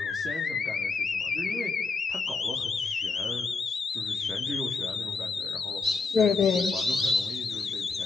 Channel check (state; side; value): quieter; right; 4.1 dB